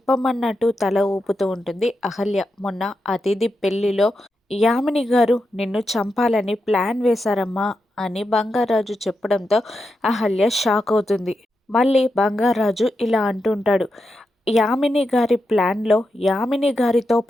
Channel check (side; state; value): both; normal; correlation 0.87